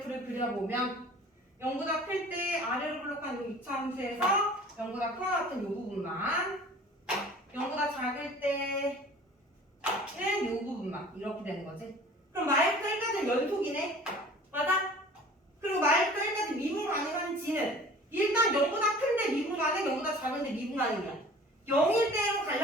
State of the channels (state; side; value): normal; both; correlation 0.46